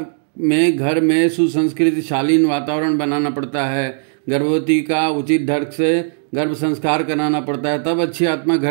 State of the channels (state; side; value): silent; left; digital silence